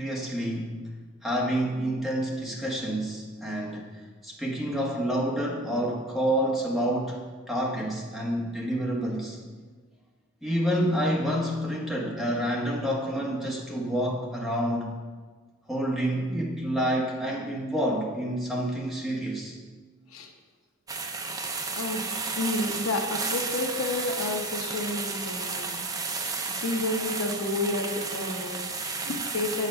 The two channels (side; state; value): both; normal; correlation 0.42